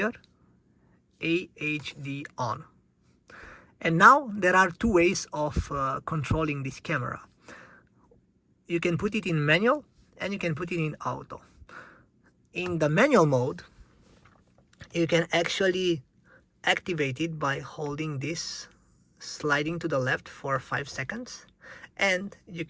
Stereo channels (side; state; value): both; identical; correlation 1.00